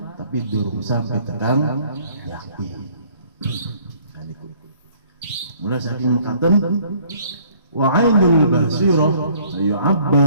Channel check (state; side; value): inverted; both; correlation -0.59